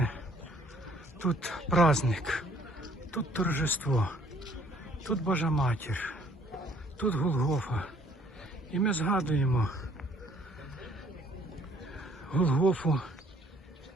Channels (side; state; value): both; normal; correlation 0.60